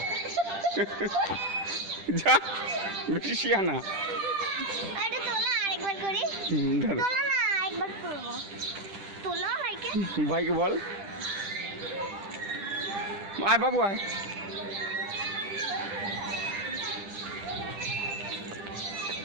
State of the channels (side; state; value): left; late; 10 ms